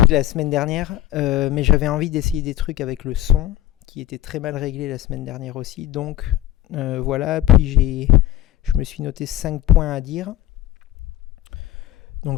la semaine dernière. Mais j'avais envie d'essayer des trucs avec le son, qui était très mal réglé la semaine dernière aussi. Donc voilà, puis je me suis noté 5 points à dire.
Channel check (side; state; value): right; quieter; 13.8 dB